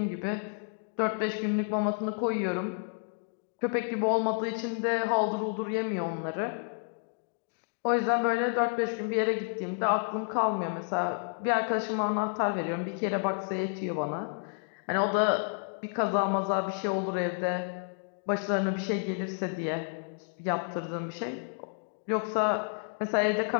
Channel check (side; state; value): right; silent; 57 dB below the other